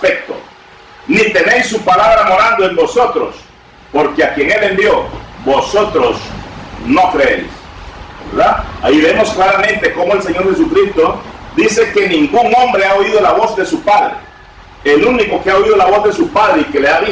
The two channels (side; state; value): both; identical; correlation 1.00